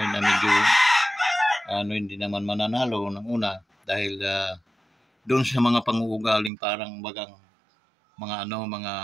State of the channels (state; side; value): drops out; left; at 6.5 s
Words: na medyo hindi naman mananalo ng una, dahil doon sa mga pang-uugaling parang bagang mga